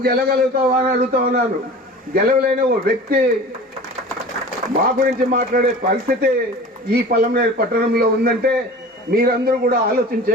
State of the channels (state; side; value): normal; both; correlation 0.39